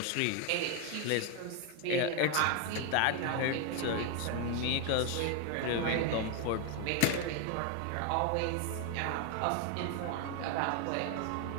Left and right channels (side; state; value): both; different; correlation 0.01